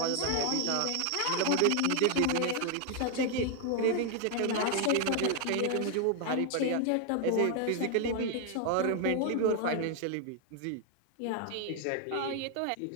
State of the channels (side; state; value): both; different; correlation 0.00